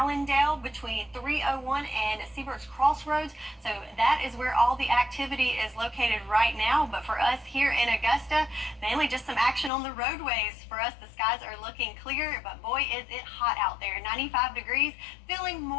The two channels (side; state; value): right; drops out; at 9.7 s